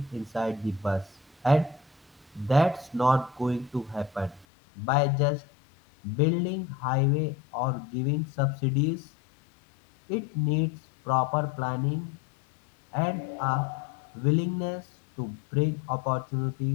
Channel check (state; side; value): drops out; right; at 4.5 s